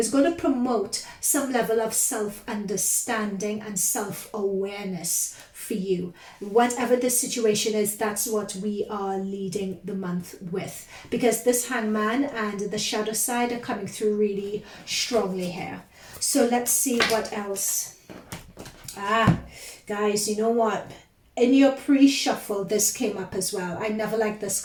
going to promote some level of self-understanding and self-awareness for you. Whatever the situation is, that's what we are leading the month with, because this hangman and the shadow side are coming through really strongly here. So let's see what else. Guys, you know what? In your pre-shuffle, this came up as well. I never liked this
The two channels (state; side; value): identical; both; correlation 1.00